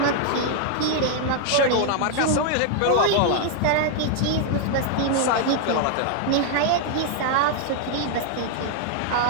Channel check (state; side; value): different; both; correlation 0.00